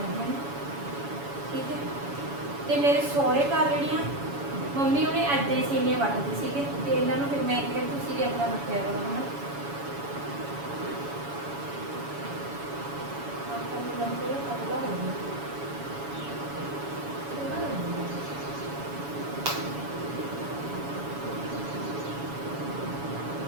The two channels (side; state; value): left; late; 7.1 ms